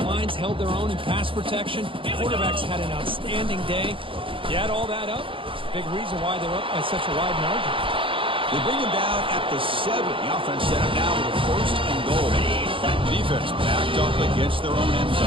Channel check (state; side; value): late; left; 0.25 ms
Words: lines held their own in pass protection. Quarterbacks had an outstanding day. You add all that up, big reason why they're up by such a wide margin. They bring him down at the 7. The offense set up now with a 1st and goal. Defense backed up against their own end